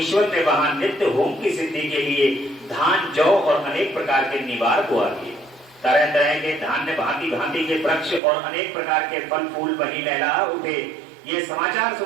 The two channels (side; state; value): left; drops out; at 8.2 s